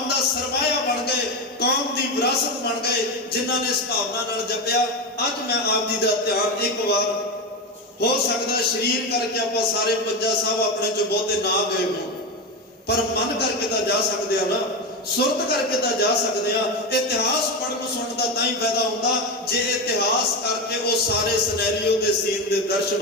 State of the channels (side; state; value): both; normal; correlation 0.16